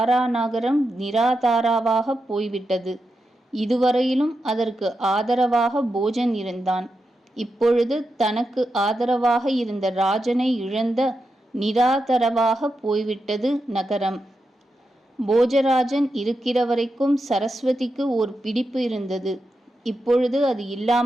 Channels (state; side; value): normal; both; correlation 0.88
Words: நகரம் நிராதாராவாக போய்விட்டது. இதுவரையிலும் அதற்கு ஆதரவாக போஜன் இருந்தான். இப்பொழுது தனக்கு ஆதரவாக இருந்த ராஜனை இழந்த நிராதரவாக போய்விட்டது நகரம். போஜராஜன் இருக்கிற வரைக்கும் சரஸ்வதிக்கு ஓர் பிடிப்பு இருந்தது. இப்பொழுது அது